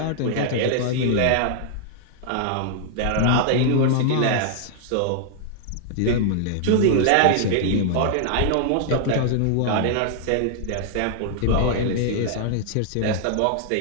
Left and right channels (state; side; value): different; both; correlation -0.01